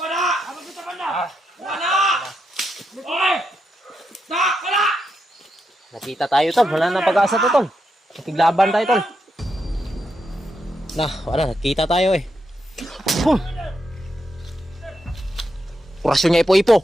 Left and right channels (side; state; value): both; normal; correlation 0.83